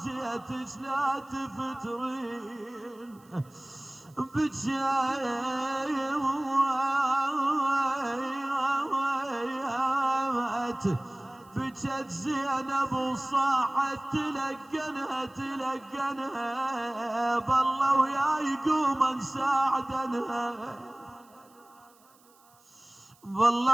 جيتش لا تفترين بجاي بجت زينب وصاحت تلقنها بالله وياي قوما نساعدنها،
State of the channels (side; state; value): right; noise; hiss, 30 dB below the sound